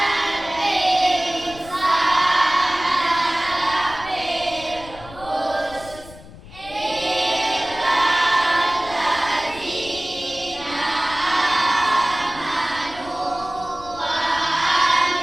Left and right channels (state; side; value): noise; left; rumble, 18 dB below the sound